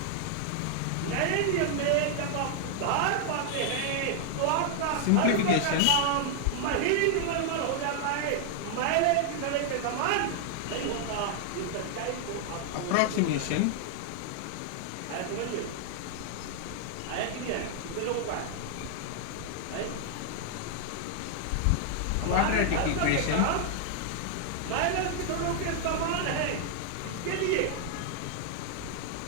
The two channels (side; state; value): both; different; correlation 0.00